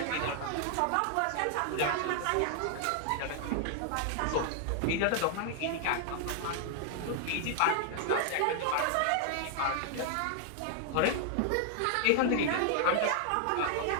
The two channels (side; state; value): both; different; correlation 0.00